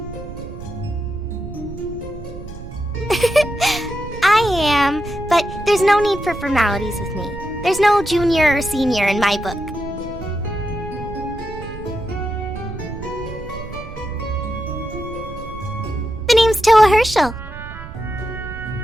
I am, but there's no need for formalities with me. There's no junior or senior in my book. The name's Toa Herschel.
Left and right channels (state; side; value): noise; right; rumble, 12 dB below the sound